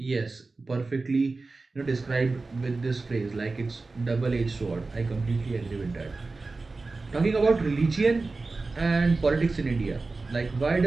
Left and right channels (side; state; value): left; quieter; 3.7 dB